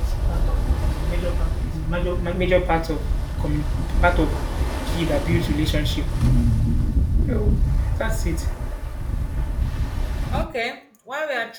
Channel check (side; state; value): both; identical; correlation 1.00